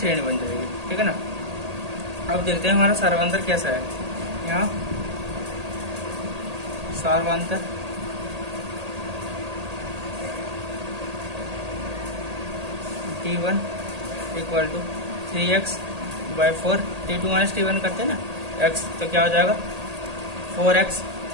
बन जाएगी। ठीक है ना। अब देखते हैं हमारा सारवांतर कैसा है। यहाँ सारवांतर T1 equal to 3x/4, T2 minus T1 करते हैं ना x, तो क्या हो जाएगा 4x।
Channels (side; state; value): left; late; 1.8 ms